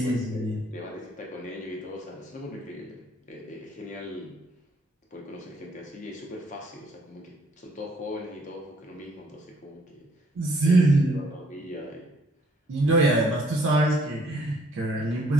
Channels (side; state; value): both; normal; correlation 0.64